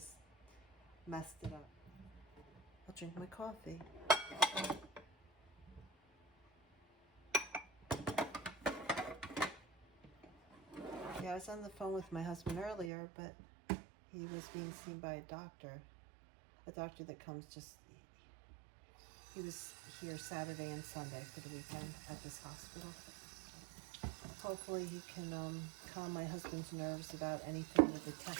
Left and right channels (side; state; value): left; drops out; at 12.9 s